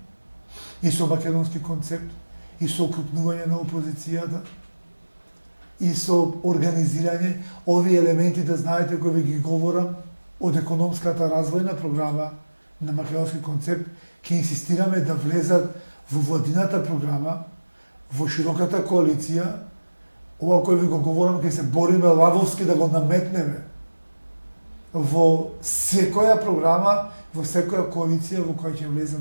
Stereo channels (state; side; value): inverted; both; correlation -1.00